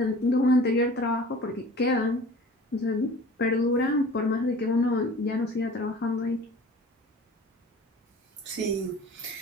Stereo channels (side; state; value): both; normal; correlation 0.44